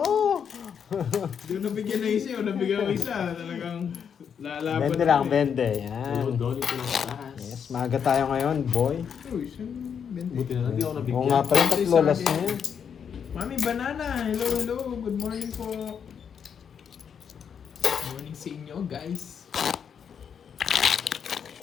Doon nabigyan na isa, o nabigyan ko isa. Talagang lalaban. 20 lang, ako eh. 20. Yan. Doon ito lang taas. Yes, maaga tayo ngayon, boy. Uy, saan 20? Buti na lang, di ako nabigyan. Oo nga pala, tatlo last na yan. Mami Banana, hello, hello. Good morning po. Good morning sa inyo, guys.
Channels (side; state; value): right; quieter; 7.4 dB